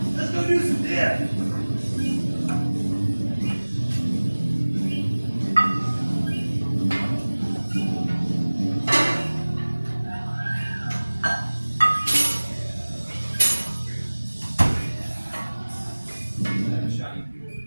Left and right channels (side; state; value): both; inverted; correlation -1.00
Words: let's go do some dips.